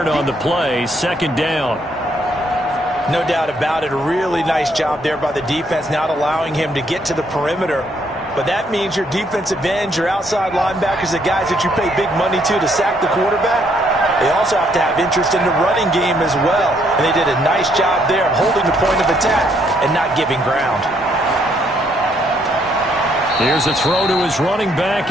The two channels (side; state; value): both; normal; correlation 0.70